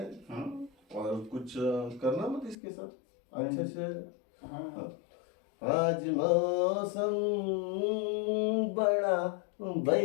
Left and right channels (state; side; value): drops out; right; at 2.6 s